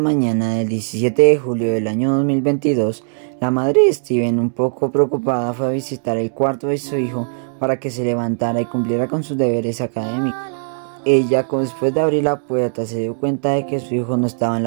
del 17 de julio del año 2022, la madre de Steven, un poco preocupada, fue a visitar el cuarto de su hijo para que se levantara y cumpliera con sus deberes académicos. Ella, después de abrir la puerta, se dio cuenta de que su hijo no estaba en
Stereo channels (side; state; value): left; silent; digital silence